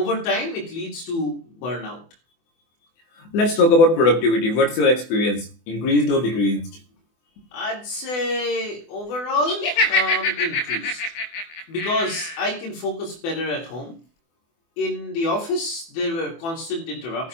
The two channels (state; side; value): late; right; 24 ms